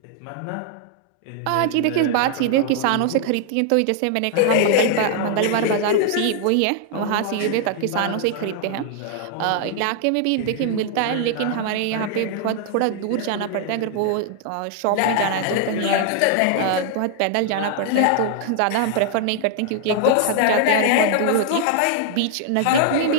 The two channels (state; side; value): different; both; correlation 0.00